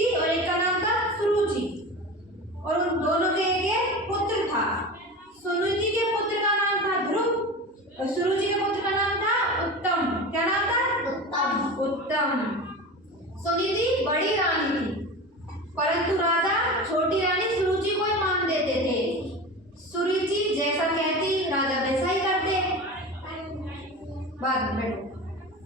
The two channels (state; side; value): normal; both; correlation 0.30